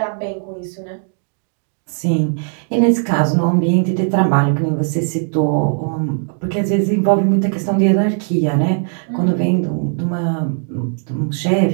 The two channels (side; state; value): left; silent; 56 dB below the other